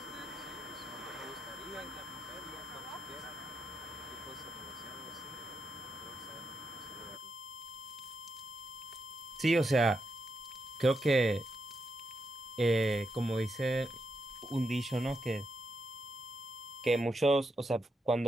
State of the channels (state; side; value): normal; both; correlation 0.83